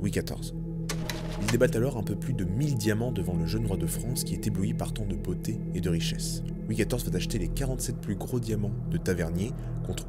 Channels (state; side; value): identical; both; correlation 1.00